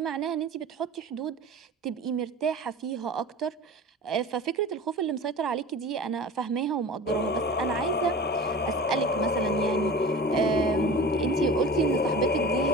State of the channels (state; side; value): normal; both; correlation 0.36